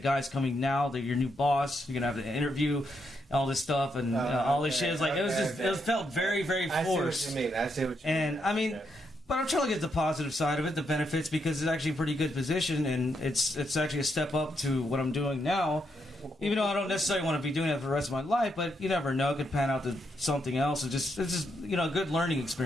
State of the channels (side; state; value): both; normal; correlation 0.79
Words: coming now. They're your new boss. You're gonna have the interview, all this stuff, and all this shit. It's like it felt very, very forced. I see what you mean. And I mean. But I'm trying to get the positive side of it, the benefits, because it's actually a pretty good position, and it's actually a step up to what I'm doing now. Even though I don't necessarily want to be doing it for the rest of my life, but you never know, it could pan out to something else. It's just a good learning